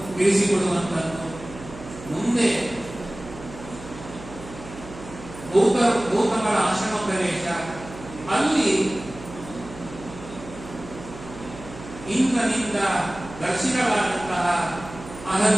ತಿಳಿಸಿಕೊಡುವಂತದ್ದು. ಮುಂದೆ ಗೌತಮರ ಆಶ್ರಮ ಪ್ರವೇಶ, ಅಲ್ಲಿ ಇಂದ್ರನಿಂದ ದರ್ಶಿತವಾದಂತಹ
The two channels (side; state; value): right; noise; hum, 15 dB below the sound